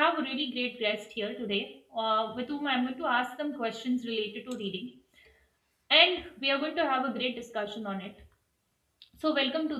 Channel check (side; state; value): both; identical; correlation 1.00